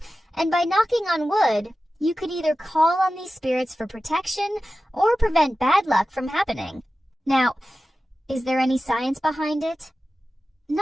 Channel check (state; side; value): normal; both; correlation 0.94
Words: and by knocking on wood, you could either call on these spirits for protection or prevent bad luck from happening. Now, is there any science behind it?